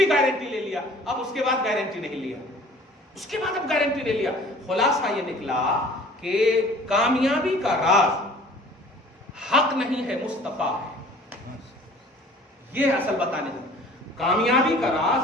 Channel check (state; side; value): normal; both; correlation 0.49